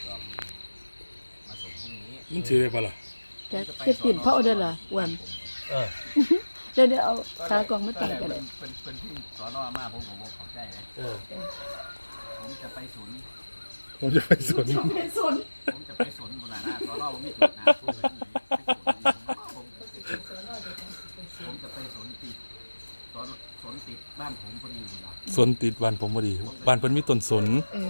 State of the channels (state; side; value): inverted; both; correlation -1.00